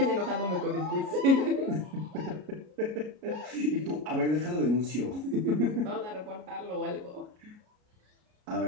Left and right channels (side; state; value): left; late; 33 ms